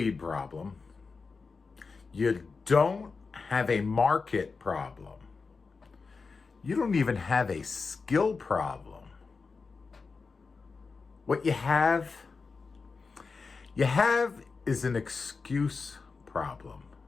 problem. You don't have a market problem. You don't even have a skill problem. What you have is an excuse problem.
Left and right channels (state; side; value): quieter; right; 4.6 dB